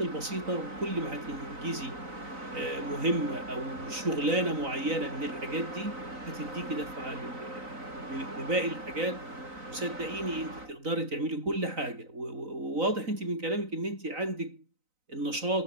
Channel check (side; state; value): left; late; 3.9 ms